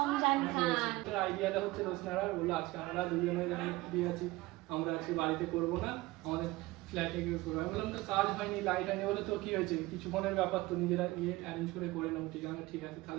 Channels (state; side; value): quieter; left; 20.1 dB